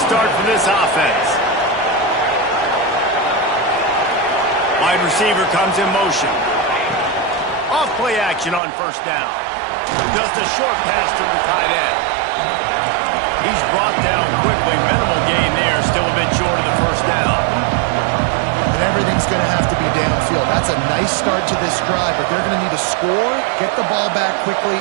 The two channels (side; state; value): left; drops out; at 8.6 s